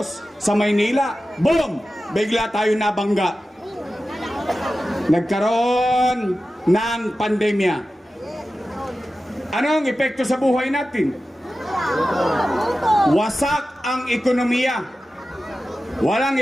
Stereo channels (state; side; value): normal; both; correlation 0.94